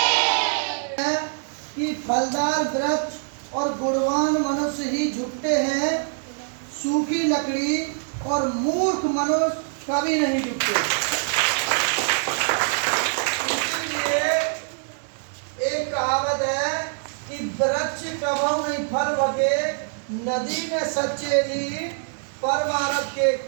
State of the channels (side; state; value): left; silent; digital silence